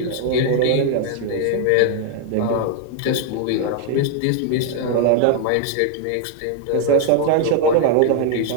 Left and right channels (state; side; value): different; both; correlation 0.00